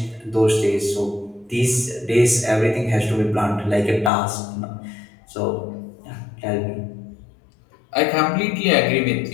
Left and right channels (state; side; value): drops out; right; at 4.1 s